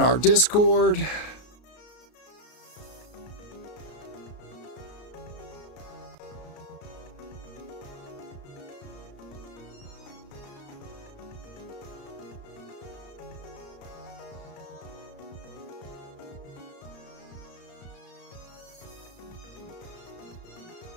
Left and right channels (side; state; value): right; late; 33 ms